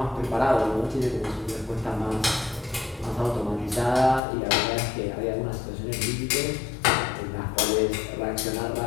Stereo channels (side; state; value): right; drops out; at 4.2 s